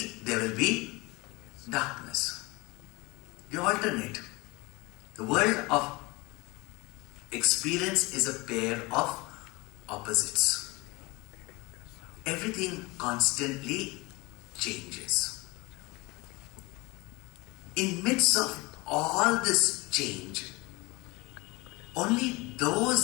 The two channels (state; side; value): quieter; right; 24.1 dB